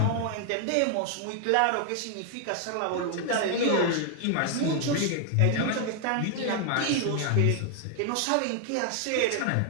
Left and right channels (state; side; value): different; both; correlation 0.00